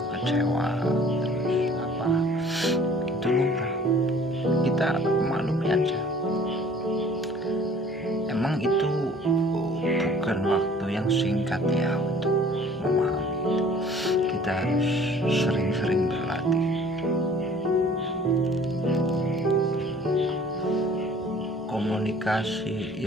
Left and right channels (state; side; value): normal; both; correlation 0.52